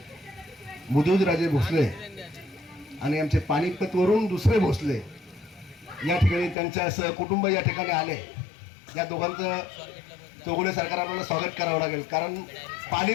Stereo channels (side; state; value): right; drops out; at 6.6 s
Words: मुदोजीराजे भोसले आणि आमचे पानिपतवरून दुसरे भोसले या ठिकाणी त्यांच्या सहकुटुंब या ठिकाणी आले. या दोघांचं चौगुले सरकार आपल्याला स्वागत करावं लागेल, कारण